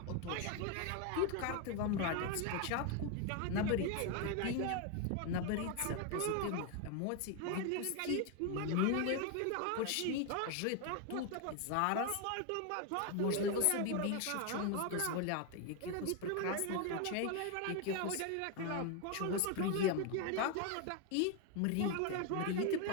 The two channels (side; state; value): both; different; correlation 0.01